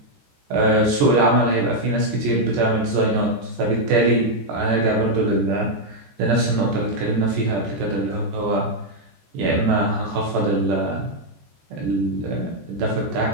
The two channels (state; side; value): late; left; 14 ms